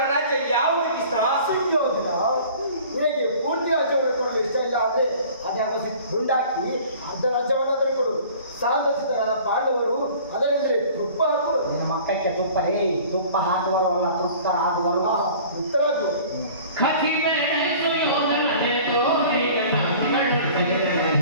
ರಾಜ್ಯ ಯಾವುದಕ್ಕಿಷ್ಟ? ಸುಯೋಧನ, ನಿನಗೆ ಪೂರ್ತಿ ರಾಜ್ಯವನ್ನು ಕೊಡಲು ಇಷ್ಟ ಇಲ್ಲ ಅಂದ್ರೆ ಅದ್ಯಾವ ಗುಂಡಾಕಿ ಅರ್ಧ ರಾಜ್ಯವನ್ನು ಅದನ್ನು ಕೊಡು. ಸಾಂತಸಿತರಾದ ಪಾಂಡವರು ಅದರಿಂದಲೇ ತುಪ್ಪ ಹಾಕುವರು. ನಿಮ್ಮ ಮಕ್ಕಕ್ಕೆ ತುಪ್ಪ ತುಪ್ಪ ಹಾಕುವರು ಅಲ್ಲ, ತೃಪ್ತರಾಗುವರು. ತೃಪ್ತರಾಗುವರು.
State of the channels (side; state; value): both; inverted; correlation -0.47